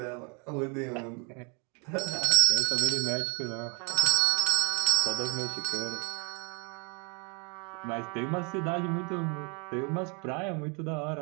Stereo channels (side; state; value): left; quieter; 35.0 dB